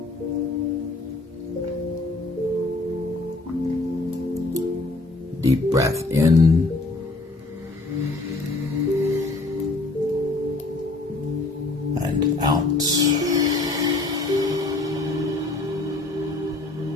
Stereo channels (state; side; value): quieter; right; 3.1 dB